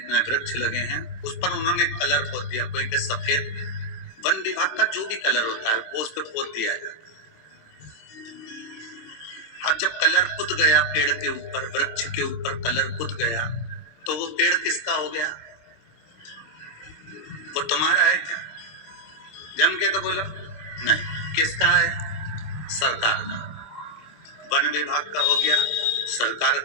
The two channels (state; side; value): late; right; 26 ms